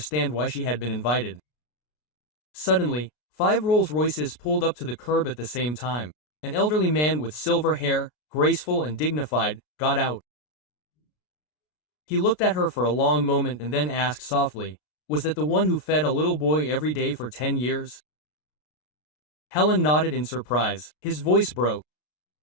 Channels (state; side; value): late; right; 33 ms